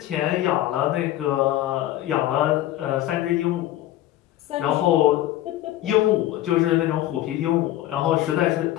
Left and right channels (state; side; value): quieter; right; 14.1 dB